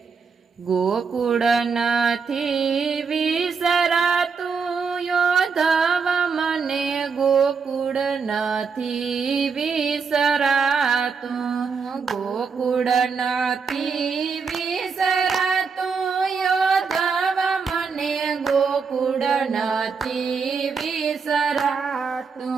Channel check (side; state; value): left; quieter; 5.5 dB